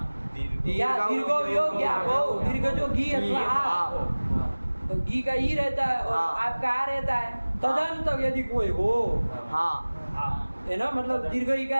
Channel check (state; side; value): inverted; both; correlation -1.00